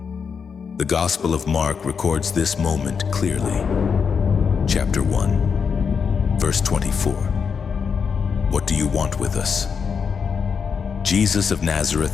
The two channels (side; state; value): right; quieter; 6.2 dB